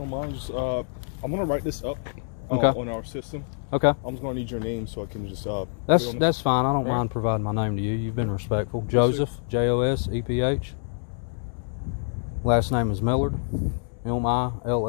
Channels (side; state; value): right; silent; 61 dB below the other